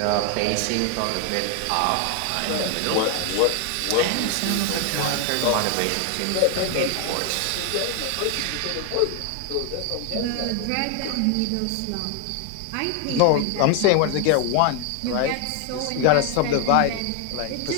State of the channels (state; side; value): different; both; correlation 0.01